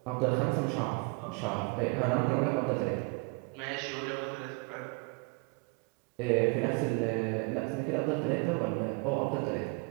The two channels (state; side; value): quieter; left; 31.3 dB